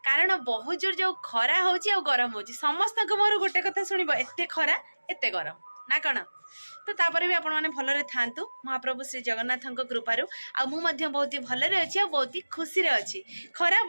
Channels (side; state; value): both; inverted; correlation -1.00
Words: कारण बहुत जोर जो खरा होची आ गरम होची समस्त मोर गोटे कथा शुणब एते खरा एते गरम ना कण तो तापर भी आपण मैंने भलरे थांतु महाप्रभु श्री जगन्नाथ कृपारू आ मु मध्य बहुत ही भलरे अच्छी आ बहुत ही खुशी रे अच्छी खरा